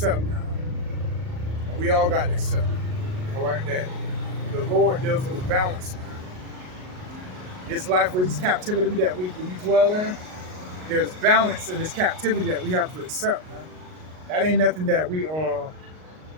now. And we all got to accept. All right, that the Lord deals with a balance. This life, with this captivity that we dwell in, there's balance in this captivity that we have to accept, man. That ain't nothing that we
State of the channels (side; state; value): left; late; 38 ms